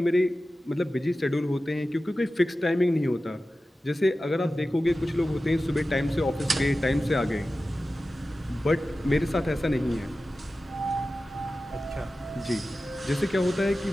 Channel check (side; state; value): both; normal; correlation 0.94